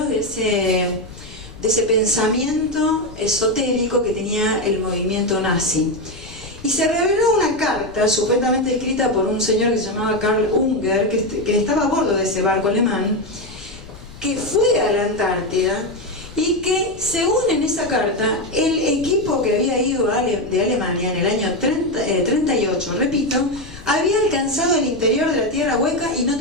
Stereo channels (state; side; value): noise; left; rumble, 18 dB below the sound